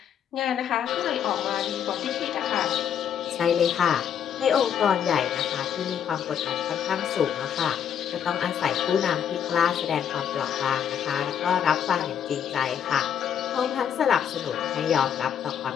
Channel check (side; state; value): right; quieter; 8.7 dB